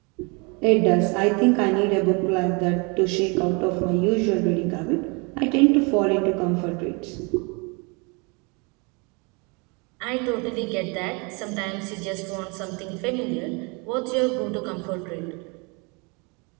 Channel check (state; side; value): quieter; left; 31.0 dB